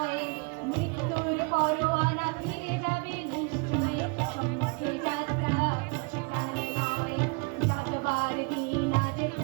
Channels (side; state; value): left; quieter; 31.4 dB